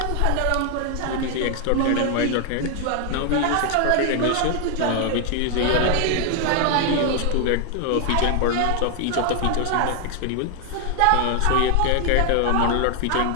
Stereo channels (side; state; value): both; different; correlation 0.00